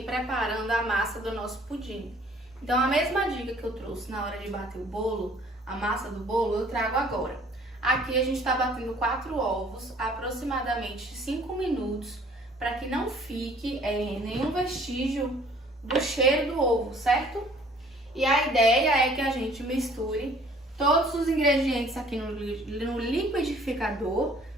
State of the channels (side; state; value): both; normal; correlation 0.56